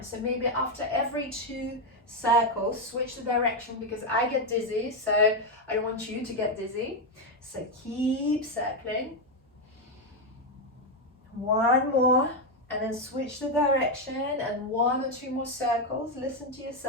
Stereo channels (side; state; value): both; normal; correlation 0.04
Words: So maybe after every 2 circles, switch the direction, because I get dizzy, so I don't want you to get dizzy. So keep circling. 1 more, and then switch the direction, and 1 or 2 more circles. Listen to